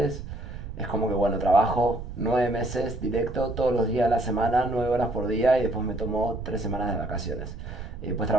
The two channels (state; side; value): noise; right; rumble, 9 dB below the sound